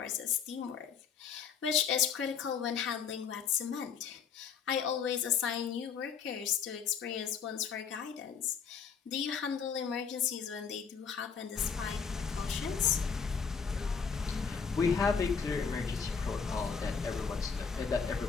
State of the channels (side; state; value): right; quieter; 6.4 dB